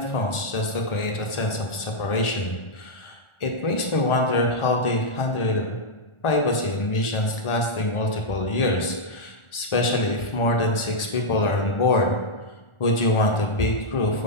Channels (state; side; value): late; right; 1.4 ms